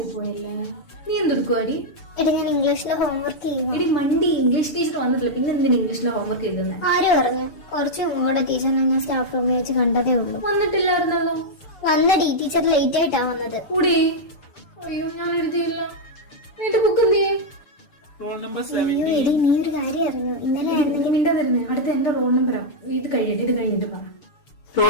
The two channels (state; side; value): late; right; 6.9 ms